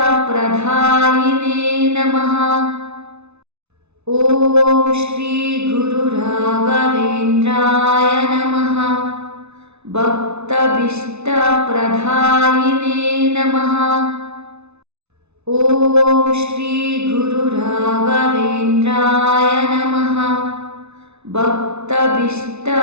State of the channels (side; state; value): left; late; 0.81 ms